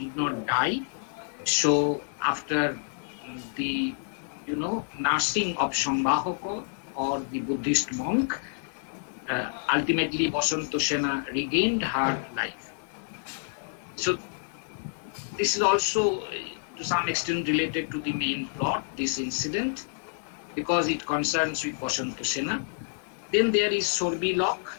did not die. So after the, nursing of Shangbahoko or the Buddhist monk, ultimately Basanto Sena regained her life. So this is also to some extent related to the main plot, this incident, because it concerns with Basanto Sena. Then there is Shorbilok,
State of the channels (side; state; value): right; silent; 59 dB below the other